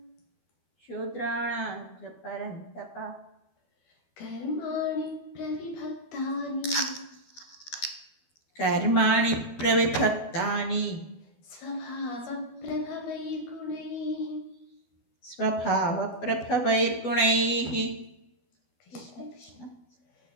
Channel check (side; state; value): right; late; 12 ms